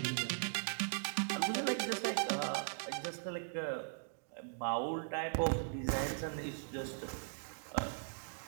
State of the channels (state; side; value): silent; left; digital silence